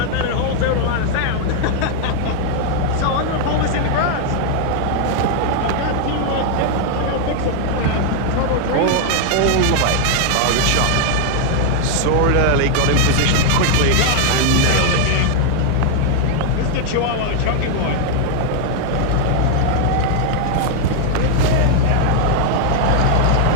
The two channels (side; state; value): both; different; correlation 0.00